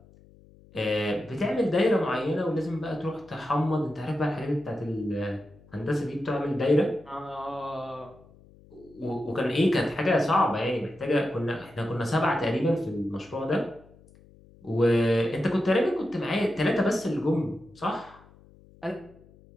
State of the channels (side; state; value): left; noise; hum, 25 dB below the sound